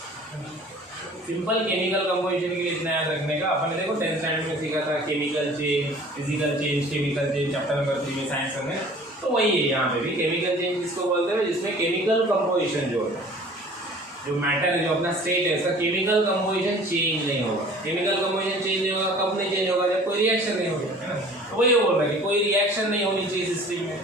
Simple chemical composition के लिए इतना याद रखने का। अपन ने देखो 10th standard में सीखा था chemical change, physical change, chemical change, chapter number 3 में साइंस में, तो वही है यहाँ पे भी। केमिकल चेंज जिसको बोलते हैं जिसमें केमिकल कंपोजिशन जो है, जो मैटर है, जो अपना स्टेट है, इसका केमिकल कंपोजिशन चेंज नहीं होगा। केमिकल कंपोजिशन चेंज नहीं होगा, कब नहीं चेंज होगा? जब कोई रिएक्शन नहीं होगा, है ना। तो वही बोल रहा है कि कोई रिएक्शन नहीं होनी चाहिए सिस्टम में,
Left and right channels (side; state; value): both; normal; correlation 0.48